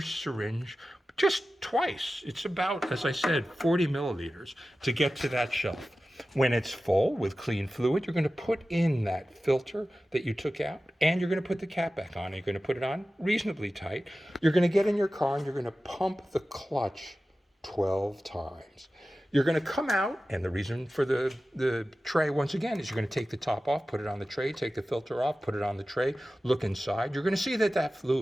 just twice. It's about, as I said, 40 milliliters to get to that shelf. When it's full with clean fluid, you're going to put in that filter that you took out and you're going to put the cap back on. You're going to put it on reasonably tight. You're going to get in your car and you're going to pump the clutch 12 times. You're going to come out, and the reason for the tray, once again, is you're going to take the top off, put it on the tray, take the filter off, put it on the tray, look inside. You're going to see that that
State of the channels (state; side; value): normal; both; correlation 0.95